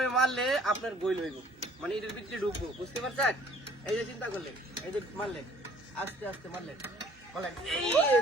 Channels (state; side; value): normal; both; correlation 0.56